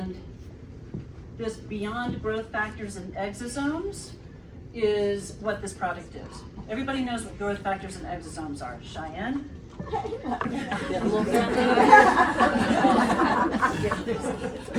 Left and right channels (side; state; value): both; identical; correlation 1.00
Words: this Beyond Growth Factors and Exosomes is what this product is. Everybody knows what growth factors and exosomes are. Cheyenne?